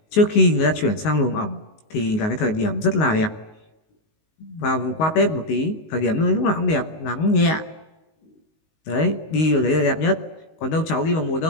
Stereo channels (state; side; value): late; right; 19 ms